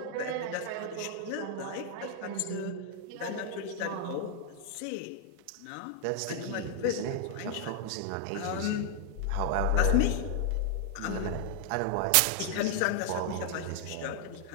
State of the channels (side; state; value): both; different; correlation 0.00